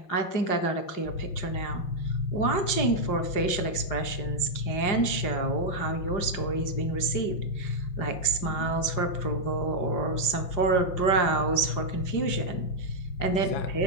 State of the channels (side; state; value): right; late; 5.6 ms